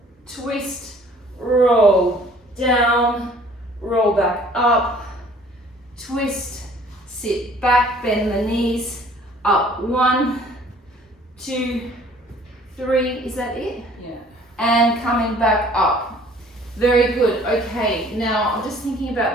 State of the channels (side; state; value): both; normal; correlation 0.54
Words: twist, roll down, roll back up, twist, sit back, bend the knees, up. 1, 2, 3, is that it? Yeah. And coming back up. Very good. Okay, now I'm just thinking